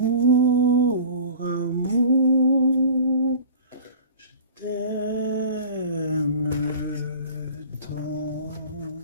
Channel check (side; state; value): both; inverted; correlation -0.42